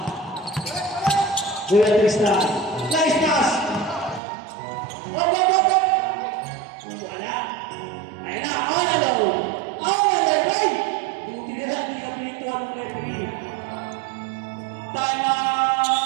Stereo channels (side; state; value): left; drops out; at 4.2 s